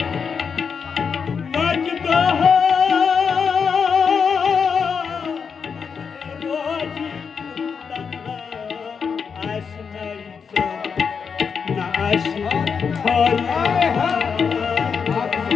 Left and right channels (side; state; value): right; quieter; 6.1 dB